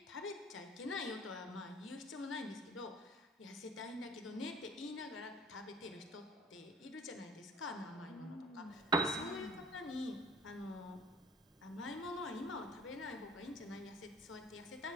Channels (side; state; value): both; normal; correlation 0.49